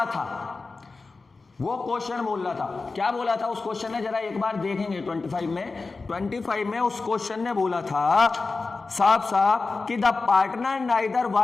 था, क्या बोला था उस क्वेश्चन ने? जरा एक बार देखेंगे। 25 में उस क्वेश्चन ने बोला था साफ कि the partner neither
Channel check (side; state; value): right; quieter; 3.9 dB